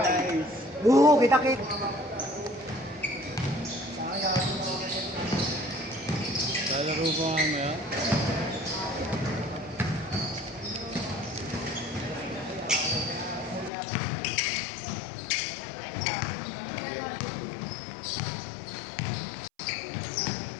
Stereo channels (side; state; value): right; drops out; at 13.7 s